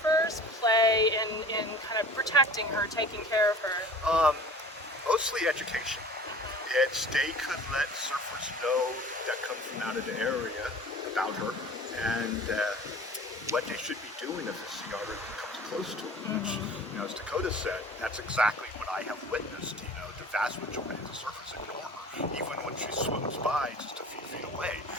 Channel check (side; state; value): both; normal; correlation 0.43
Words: play in kind of protecting her, taking care of her? Mostly education. They could let surfers know that come from out of the area about her, and what they should be doing if a sea otter comes close to them. Which, as Dakota said, that's exactly what I have witnessed. The vast majority of the surfers ignore her, even when she swims by just a few feet away,